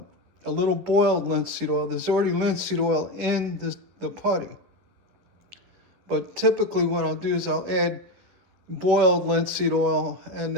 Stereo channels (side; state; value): left; late; 11 ms